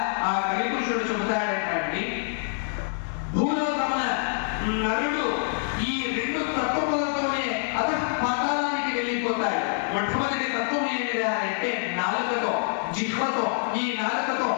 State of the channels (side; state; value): right; silent; digital silence